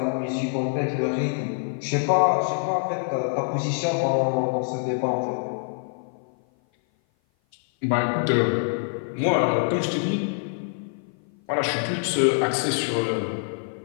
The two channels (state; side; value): silent; right; 56 dB below the other